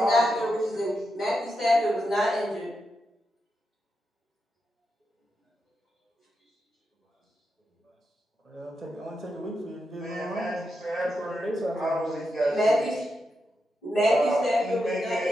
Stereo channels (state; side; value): normal; both; correlation 0.86